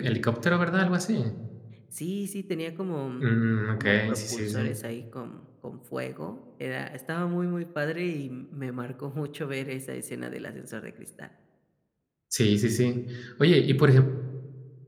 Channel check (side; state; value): both; identical; correlation 1.00